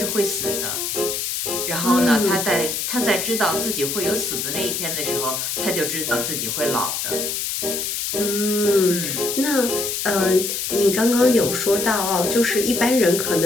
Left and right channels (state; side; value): noise; left; hiss, 2 dB below the sound